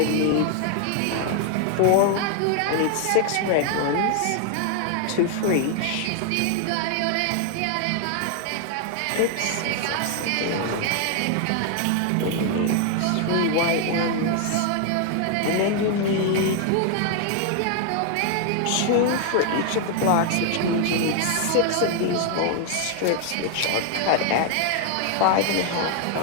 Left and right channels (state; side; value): different; both; correlation 0.00